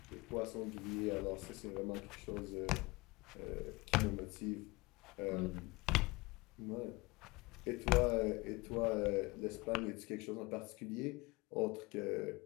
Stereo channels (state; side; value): quieter; right; 23.8 dB